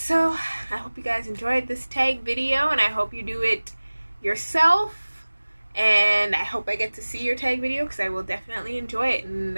I hope you guys enjoyed this tag video, and I hope you do it yourself, and I hope I get to see your tag video, because I will definitely enjoy it. And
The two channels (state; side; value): inverted; both; correlation -1.00